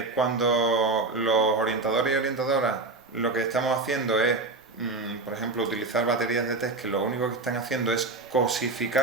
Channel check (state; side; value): quieter; left; 3.5 dB